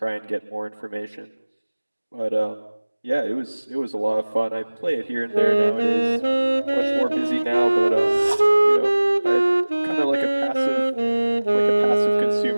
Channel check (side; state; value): both; inverted; correlation -1.00